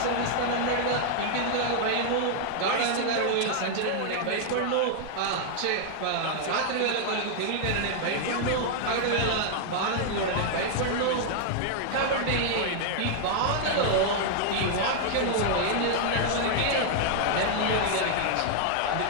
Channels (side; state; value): both; different; correlation 0.00